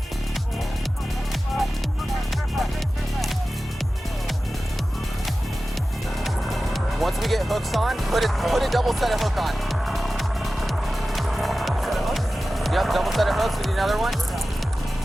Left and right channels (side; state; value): both; normal; correlation 0.95